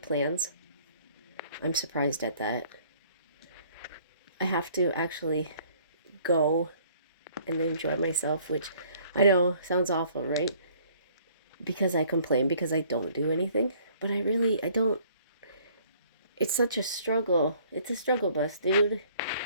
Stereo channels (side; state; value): both; inverted; correlation -0.58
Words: plans. I'm surprised at that. I have to actually go and enjoy myself, which I know sounds awful, right? Because I complain because I don't do anything, but I don't. It's such a struggle. It's a struggle bus, dude.